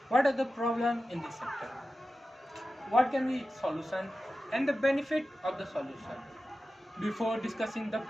What are the problems in this sector? What can be its solution and the benefit of the solution? Before discussing the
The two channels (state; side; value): normal; both; correlation 0.94